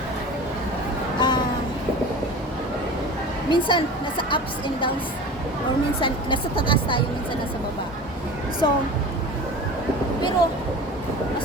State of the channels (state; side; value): normal; both; correlation 0.36